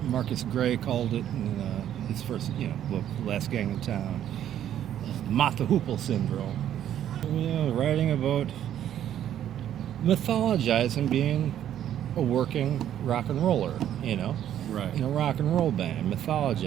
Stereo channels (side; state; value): left; quieter; 10.8 dB